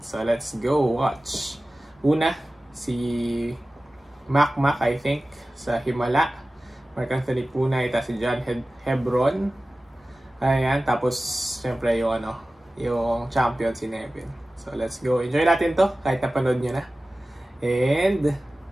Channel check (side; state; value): both; normal; correlation 0.96